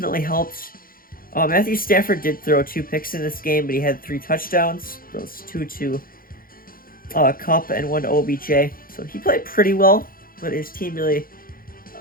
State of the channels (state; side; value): late; right; 0.42 ms